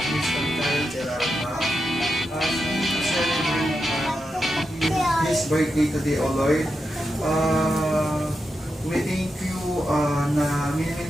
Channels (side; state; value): both; normal; correlation 0.87